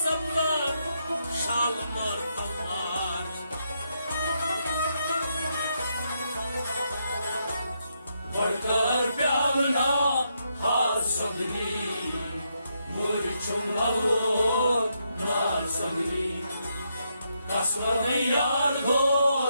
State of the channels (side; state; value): both; inverted; correlation -0.79